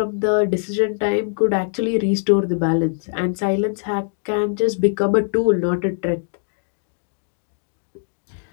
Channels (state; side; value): silent; right; digital silence